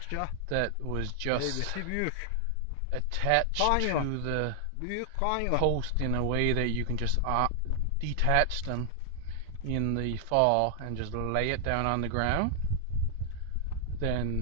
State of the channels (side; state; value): both; different; correlation 0.00